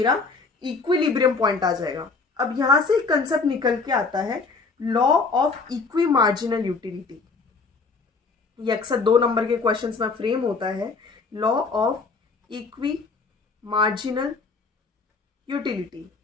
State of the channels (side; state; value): right; quieter; 4.3 dB